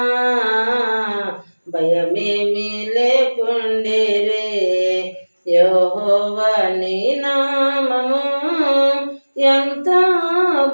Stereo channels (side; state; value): both; inverted; correlation -1.00